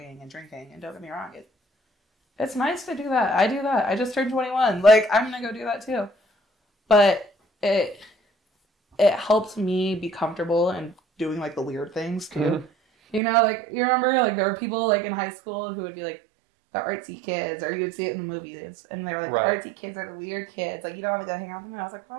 and drinking. And don't get me wrong, it's nice to do that. I do that. I just turned 21. Like, I'm gonna go do that, too. But it helped me be comfortable and doing like the weird things too. Mm-hmm. Like you remember like there were people like in high school who would be like the artsy kids, or you would see it in the movies, and they were like the artsy kids are the weird kids. Like you don't want to go hang out with them. And I was like,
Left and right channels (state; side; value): drops out; left; at 13.2 s